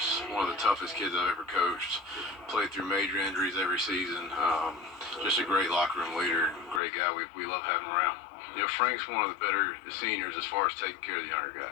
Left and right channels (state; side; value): drops out; right; at 6.8 s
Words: One of the toughest kids I've ever coached. Played through major injuries every season. Just a great locker room leader. Great guy. We love having him around. Frank's one of the better seniors as far as taking care of the younger